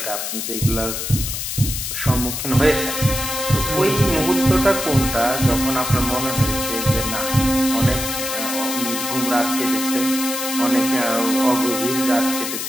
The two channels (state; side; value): noise; left; hiss, 4 dB below the sound